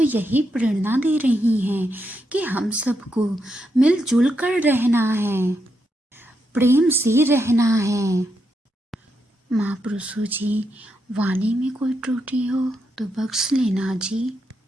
यही प्रेरणा दे रही हैं कि हम सबको मिलजुल कर रहना है, प्रेम से रहना है। महापुरुषों जी, वाणी में कोई त्रुटि हो तो बख्श लेना जी।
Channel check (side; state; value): both; normal; correlation 0.82